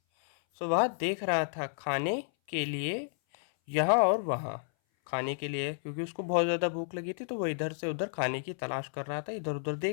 So वह देख रहा था खाने के लिए यहाँ और वहाँ। खाने के लिए क्योंकि उसको बहुत ज़्यादा भूख लगी थी, तो वो इधर से उधर खाने की तलाश कर रहा था, इधर उधर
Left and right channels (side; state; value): right; silent; 57 dB below the other